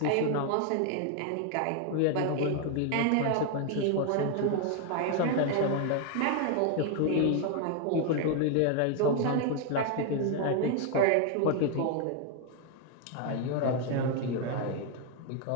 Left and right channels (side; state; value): both; different; correlation 0.00